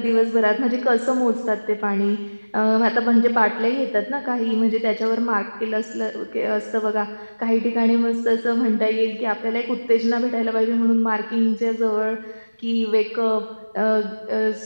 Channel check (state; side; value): inverted; both; correlation -1.00